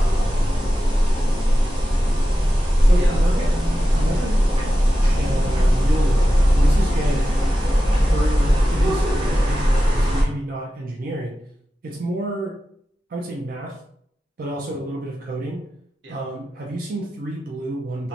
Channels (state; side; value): normal; both; correlation 0.93